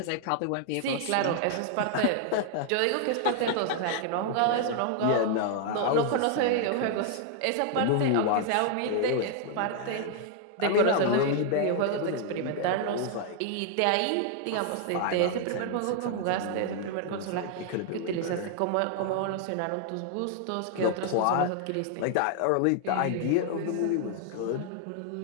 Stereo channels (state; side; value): different; both; correlation 0.00